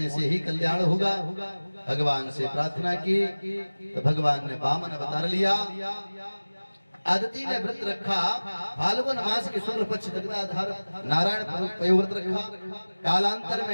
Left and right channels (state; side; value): inverted; both; correlation -1.00